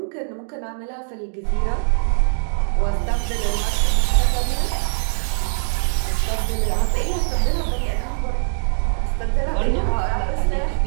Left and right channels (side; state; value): left; silent; digital silence